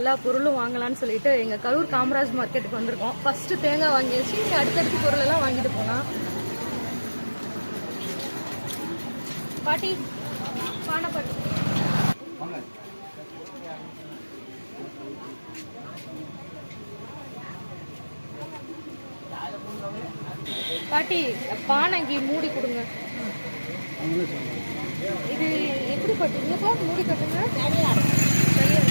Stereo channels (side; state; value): both; inverted; correlation -1.00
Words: பொருளும் வாங்கலாம்னு சொல்லிட்டு எங்க கரூர் காமராஜ் மார்க்கெட்டுக்கு வந்திருக்கோம். ஃபர்ஸ்ட் தேங்காய் வாங்கியாச்சு, அடுத்தடுத்து பொருள் எல்லாம் வாங்கிட்டு போலாம். பாட்டி பானை பாட்டி பாட்டி பானைக்கு மூடி கொடுங்க. இது எப்படி பட்டுங்கப்பா? மூடி கட்டுங்க.